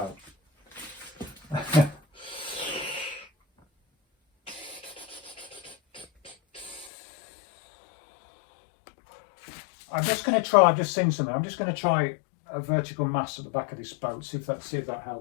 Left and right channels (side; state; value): right; drops out; at 6.9 s